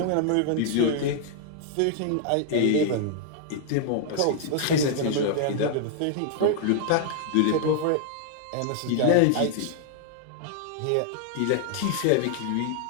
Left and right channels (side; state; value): both; different; correlation 0.00